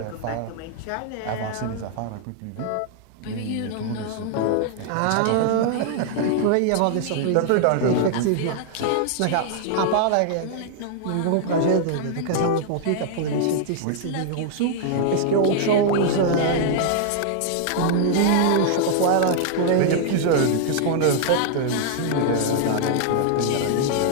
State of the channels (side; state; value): both; different; correlation 0.00